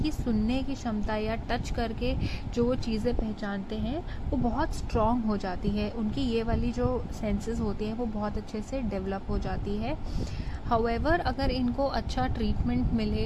सुनने की क्षमता या टच करके जो वो चीज़ें पहचानते हैं वो बहुत स्ट्रॉन्ग हो जाती है, उनकी ये वाली जो सेंसेस होती हैं वो बहुत अच्छे से डेवलप हो जाती है। हाउएवर अगर इनको अच्छा ट्रीटमेंट मिले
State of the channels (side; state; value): both; identical; correlation 1.00